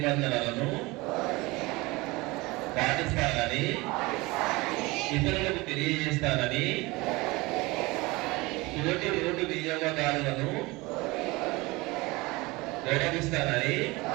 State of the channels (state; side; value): quieter; left; 22.8 dB